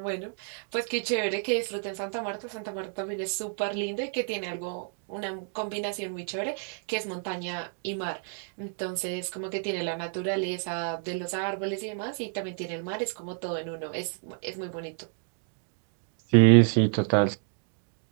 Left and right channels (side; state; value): left; silent; 56 dB below the other